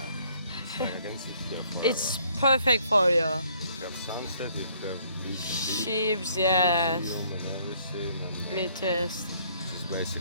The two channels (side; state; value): both; inverted; correlation -0.64